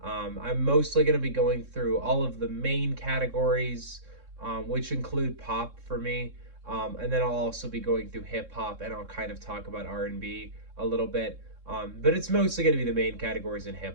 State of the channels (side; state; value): left; late; 3.6 ms